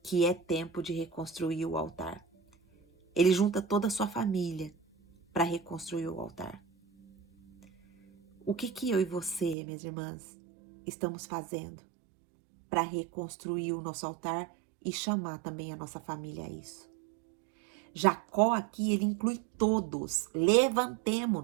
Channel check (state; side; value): drops out; left; at 9.6 s